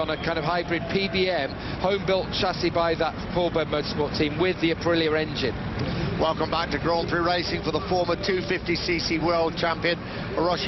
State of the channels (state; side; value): identical; both; correlation 1.00